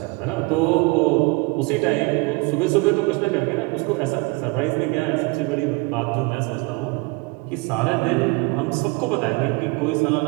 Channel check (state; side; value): quieter; left; 27.3 dB